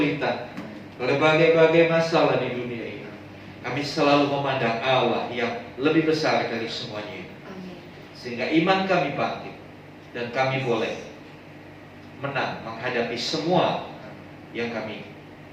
berbagai-bagai masalah di dunia ini, kami selalu memandang Allah yang lebih besar dari semuanya itu. Sehingga iman kami bangkit dan kami boleh menang menghadapi semua yang kami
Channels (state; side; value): identical; both; correlation 1.00